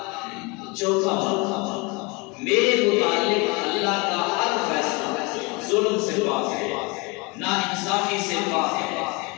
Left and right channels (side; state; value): right; quieter; 28.0 dB